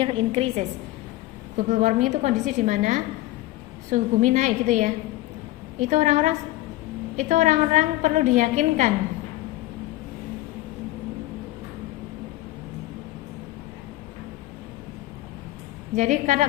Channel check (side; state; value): right; quieter; 17.1 dB